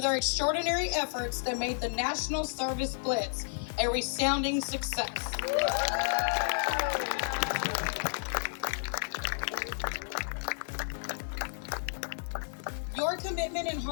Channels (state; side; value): silent; right; digital silence